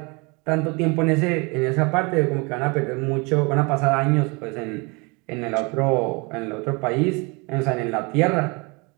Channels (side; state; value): left; quieter; 28.9 dB